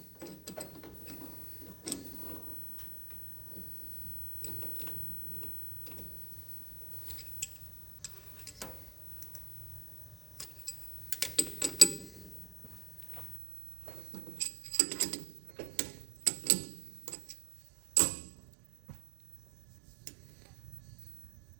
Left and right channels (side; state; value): left; drops out; at 13.4 s